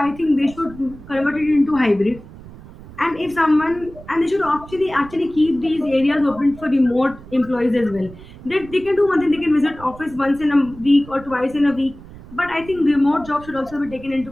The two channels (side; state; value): right; noise; rumble, 18 dB below the sound